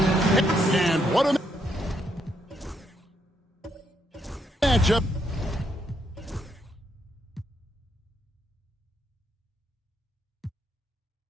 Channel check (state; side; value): normal; both; correlation 0.76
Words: And what a matchup.